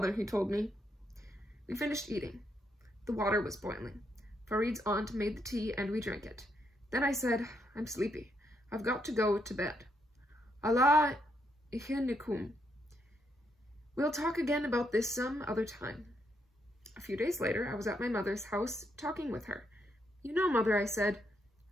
he told me. We finished eating. The water was boiling. Farid's aunt made the tea and we drank it. Then I said, "I'm sleepy. I've got to go to bed. Allah ihinikum. We'll talk again about this some other time." A few days later, I was at my mother's house talking with her. "You know, Mother," I said,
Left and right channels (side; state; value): both; normal; correlation 0.77